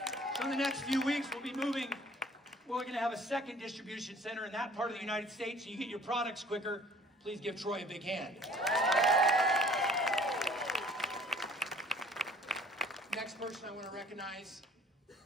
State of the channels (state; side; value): normal; both; correlation 0.53